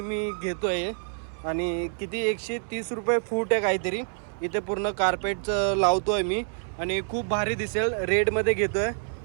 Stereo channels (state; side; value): silent; left; 60 dB below the other